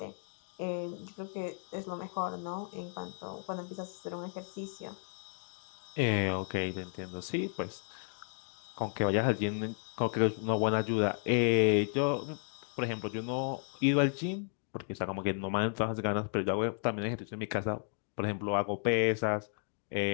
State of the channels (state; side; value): silent; right; digital silence